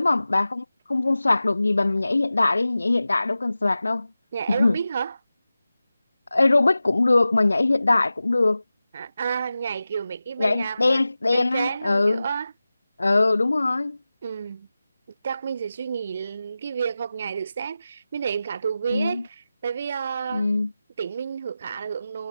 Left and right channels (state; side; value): inverted; both; correlation -0.95